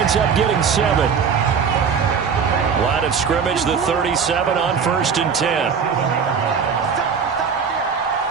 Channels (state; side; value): quieter; left; 6.4 dB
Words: up getting 7. Line of scrimmage, the 37 on 1st and 10.